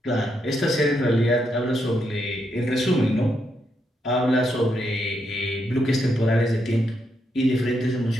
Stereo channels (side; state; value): both; normal; correlation 0.80